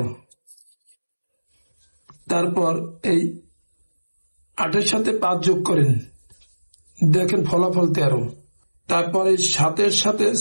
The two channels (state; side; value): inverted; both; correlation -1.00